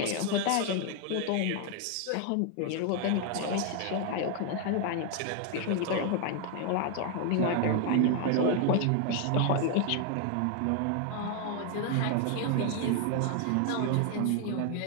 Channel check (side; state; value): both; different; correlation 0.00